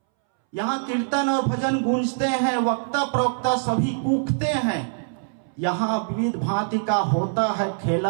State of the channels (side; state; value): left; silent; 63 dB below the other